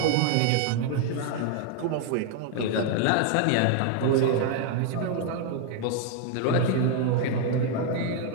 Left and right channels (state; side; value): different; both; correlation 0.00